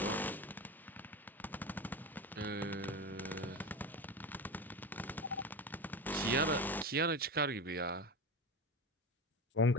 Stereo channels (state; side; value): normal; both; correlation 0.24